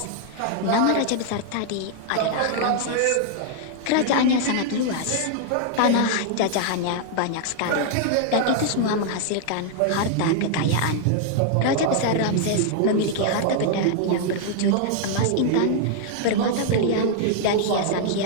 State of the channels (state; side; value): different; both; correlation 0.00